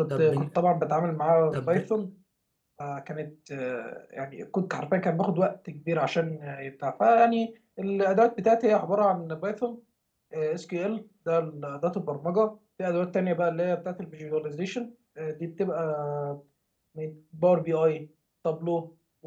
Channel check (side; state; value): both; identical; correlation 1.00